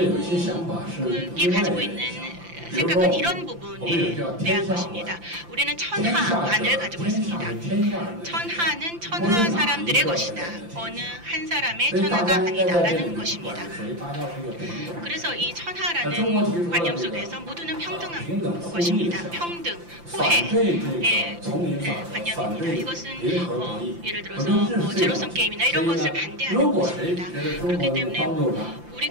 가지고 있는 생각은 이런 부분에 대한 것입니다. 우리는 천하안을 가지고 있습니다. 천하는 천하 사람들의 것이다. 어느 한 사람의 천하가 아니다라는 것입니다. 그래서 이 천하라는 관념 속에서 모두는 평등한 것입니다. 평등, 호혜의 관념입니다. 이것은 예를 들어서 제로섬 게임이나 이런 것을 반대하는 것입니다. 그렇기 때문에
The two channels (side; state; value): left; late; 5.8 ms